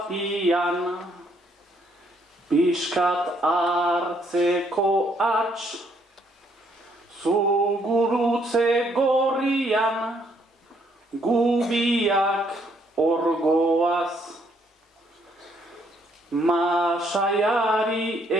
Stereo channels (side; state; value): both; normal; correlation 0.69